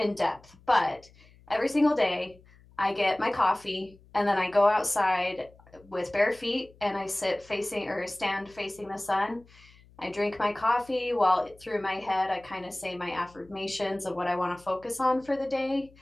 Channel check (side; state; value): left; noise; hum, 26 dB below the sound